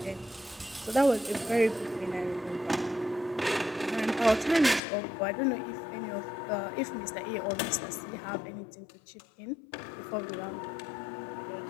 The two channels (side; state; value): right; drops out; at 4.8 s